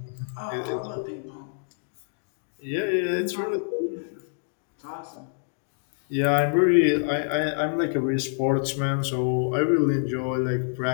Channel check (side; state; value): right; silent; digital silence